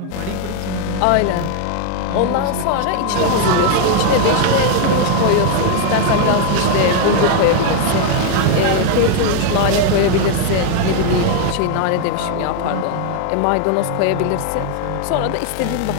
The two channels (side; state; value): both; different; correlation 0.00